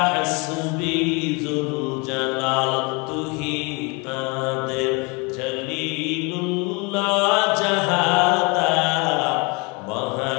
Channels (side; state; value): right; quieter; 29.6 dB